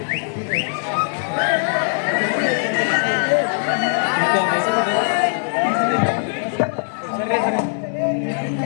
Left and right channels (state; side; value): silent; right; digital silence